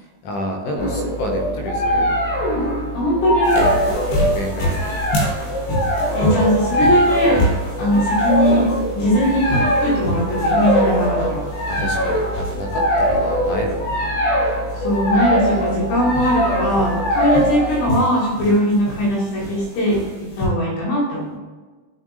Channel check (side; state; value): right; late; 20 ms